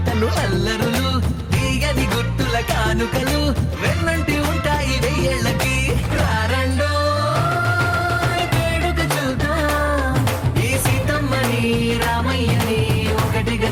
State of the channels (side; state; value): both; identical; correlation 1.00